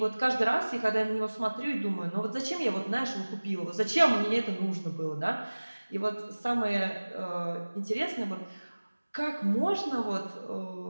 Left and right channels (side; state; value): both; inverted; correlation -1.00